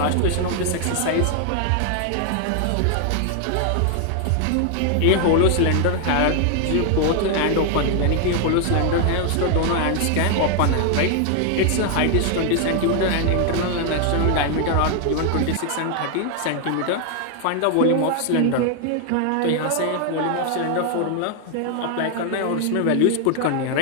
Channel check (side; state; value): both; different; correlation 0.00